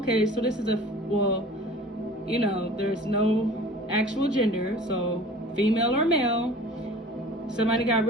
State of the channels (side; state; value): both; normal; correlation 0.44